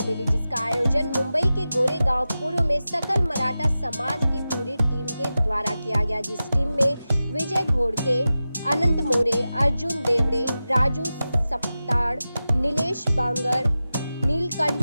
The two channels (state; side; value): inverted; both; correlation -0.94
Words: मिली, जिसका आयोजन मुंबई के गोरेगांव पूर्व में सकल मराठा समाज की पूरी टीम के द्वारा किया गया, जिस टीम में विजय घोड़के, अनंत मोरे, अर्जुन देवड़े, राजू सप्ताड़, नीलेश बांगर,